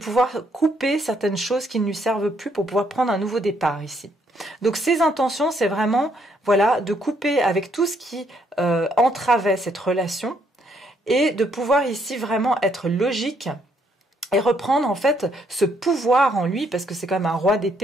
couper certaines choses qui ne lui servent plus pour pouvoir prendre un nouveau départ ici. Donc ses intentions, c'est vraiment de couper avec tout ce qui entravait cette relation et de pouvoir ici vraiment être logique et reprendre en fait ce pouvoir en lui, parce que c'est quand même un roi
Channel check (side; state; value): both; normal; correlation 0.71